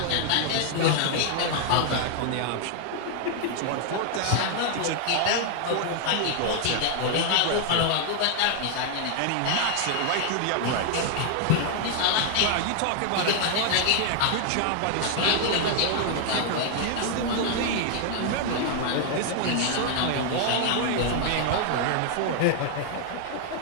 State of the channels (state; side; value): different; both; correlation 0.00